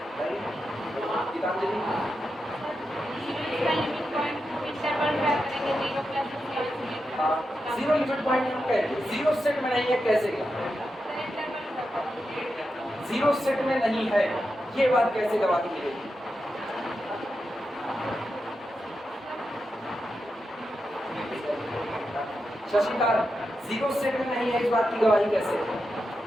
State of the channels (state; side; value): normal; both; correlation 0.88